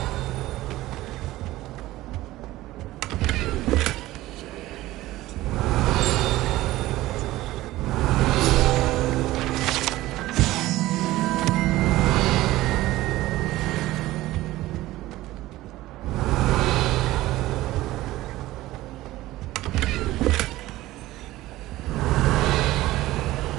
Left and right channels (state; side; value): quieter; left; 16.9 dB